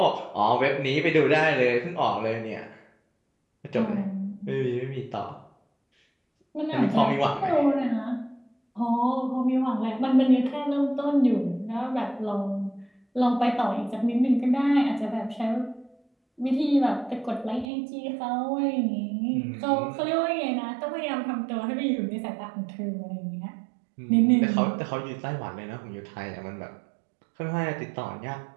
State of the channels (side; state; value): left; drops out; at 17.7 s